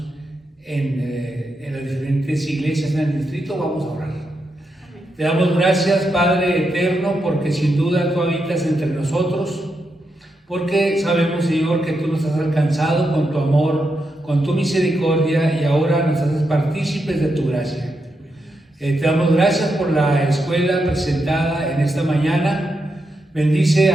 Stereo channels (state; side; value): normal; both; correlation 0.84